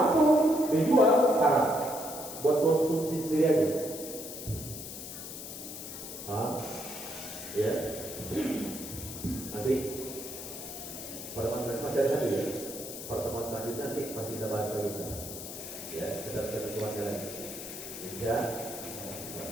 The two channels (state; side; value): noise; left; hiss, 9 dB below the sound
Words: dijual haram, buat konsumsi sendiri aja. Ya. Nanti pertemuan selanjutnya ya. Pertemuan selanjutnya nanti pasti kita bahas lagi. Ya, kita ketentuannya lagi. Ya.